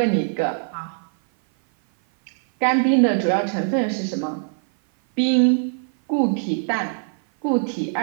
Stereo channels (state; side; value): silent; left; 57 dB below the other